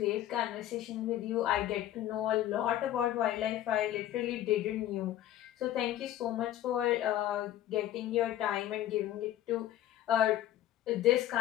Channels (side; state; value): right; quieter; 12.8 dB